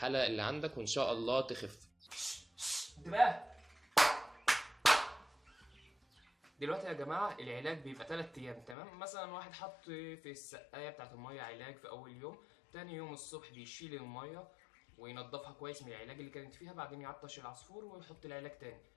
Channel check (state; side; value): drops out; right; at 8.8 s